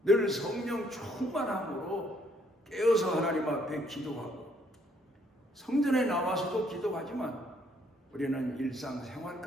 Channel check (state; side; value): normal; both; correlation 0.67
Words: 늘 성령 충만함으로 깨어서 하나님 앞에 기도하고 성전에 나와서도 기도하지만 우리는 일상생활